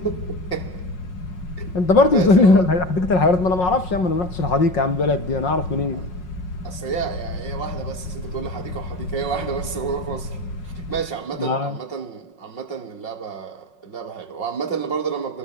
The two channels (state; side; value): late; right; 5.5 ms